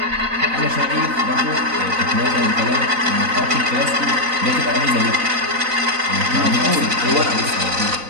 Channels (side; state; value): left; late; 3.9 ms